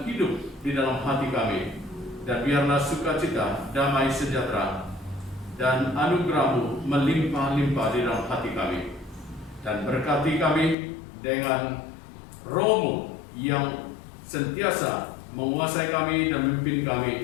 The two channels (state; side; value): drops out; right; at 10.8 s